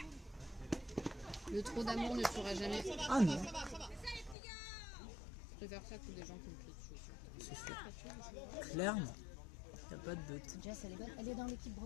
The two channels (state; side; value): drops out; right; at 4.4 s